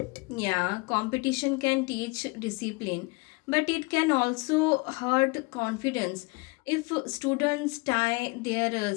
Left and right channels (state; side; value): quieter; right; 27.6 dB